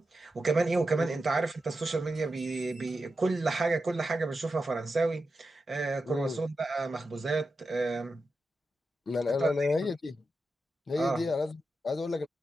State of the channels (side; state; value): both; normal; correlation 0.89